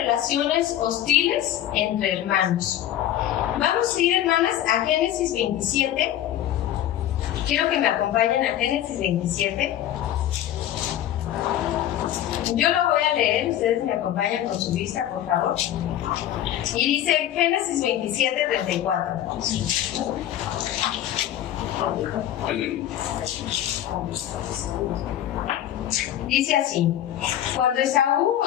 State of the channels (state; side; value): quieter; right; 12.0 dB